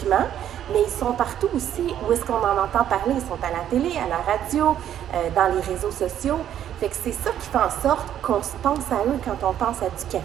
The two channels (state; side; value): quieter; left; 10.5 dB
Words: mais ils sont partout aussi où est-ce qu'on en entend parler. Ils sont à la télé, à la radio, dans les réseaux sociaux. Fait que c'est ça qui fait en sorte qu'on se pense à eux quand on pense à du